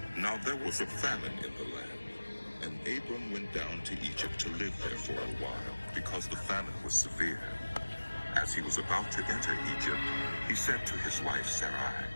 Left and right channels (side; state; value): both; inverted; correlation -1.00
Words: Now there was a famine in the land, and Abram went down to Egypt to live there for a while because the famine was severe. As he was about to enter Egypt, he said to his wife Sarai,